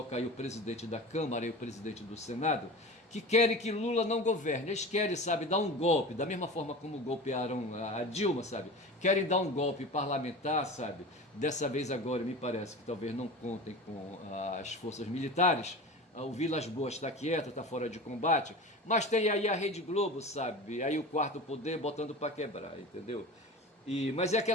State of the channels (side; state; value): both; normal; correlation 0.32